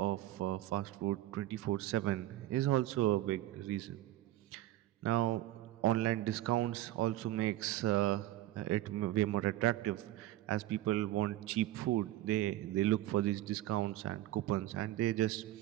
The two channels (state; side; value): quieter; left; 14.8 dB